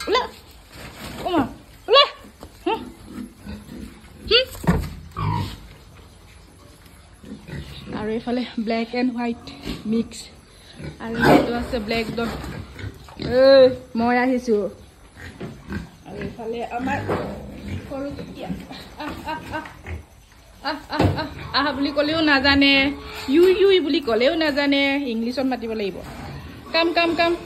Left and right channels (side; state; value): both; identical; correlation 1.00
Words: Ula. Oma. Ula. Aru efale black and white mix. Aru eto ase black Don. Moi ahisu. Aru efale amar horu kutia. বুলি কলেও না জানে U বুলি কলেও না জানে ইংলিশত মাতিব লাগিব কাম